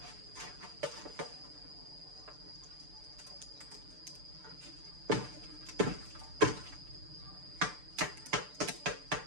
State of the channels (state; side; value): late; left; 6.8 ms